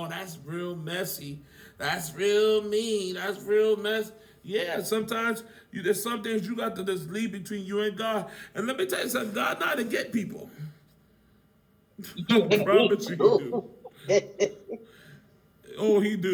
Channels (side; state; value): both; identical; correlation 1.00